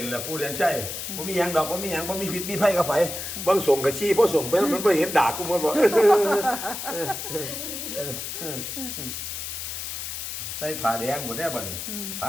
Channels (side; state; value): left; noise; hiss, 6 dB below the sound